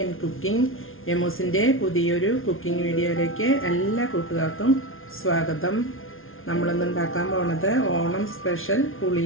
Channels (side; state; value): right; late; 0.60 ms